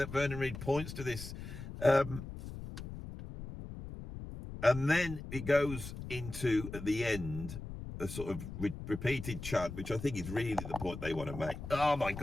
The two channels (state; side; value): noise; left; rumble, 10 dB below the sound